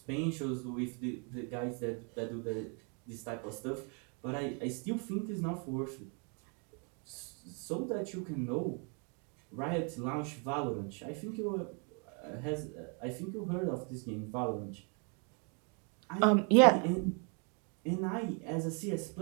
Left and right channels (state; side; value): quieter; left; 37.4 dB